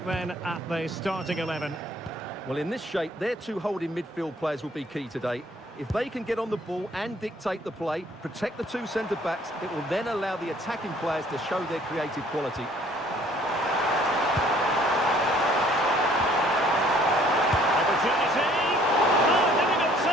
then at the starting 11. Well, in this shape, their two holding midfield players will be key today. If they can get on the ball and dictate the play, protect the two centre-backs, it will then allow the attacking players to show their creative quality. Opportunity! Oh, difficult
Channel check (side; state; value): both; normal; correlation 0.59